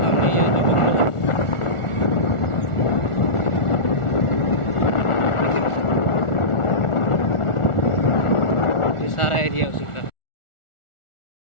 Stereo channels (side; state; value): right; late; 1.4 ms